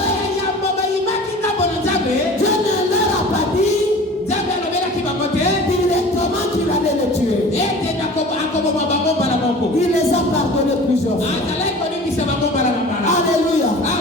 yambo bayimaki ngambo na nzambe, Dieu ne leur a pas dit nzambe alobelaki bango te directement qu'il allait les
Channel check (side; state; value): both; normal; correlation 0.41